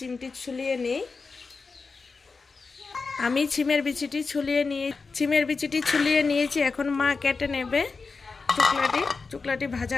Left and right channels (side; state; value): right; quieter; 4.5 dB